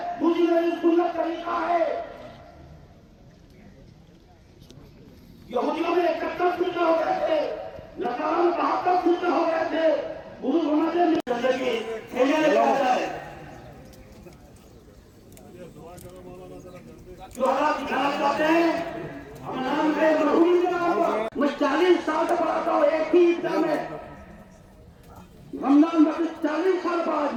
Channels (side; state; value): both; identical; correlation 1.00